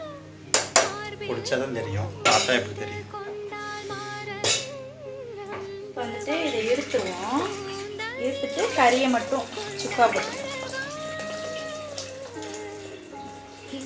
குடிச்சாதான் தெரியும், பார்த்தா எப்படி தெரியும்? வந்துட்டு இதை எடுத்துருவோம். எடுத்துட்டு கறியை மட்டும் சுக்கா போட்டுருவோம்.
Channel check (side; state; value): both; identical; correlation 1.00